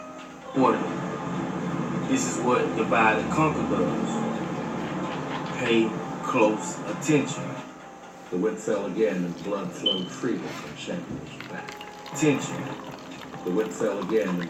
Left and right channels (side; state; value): both; identical; correlation 1.00